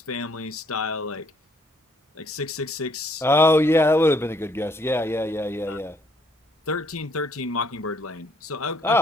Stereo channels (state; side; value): normal; both; correlation 0.67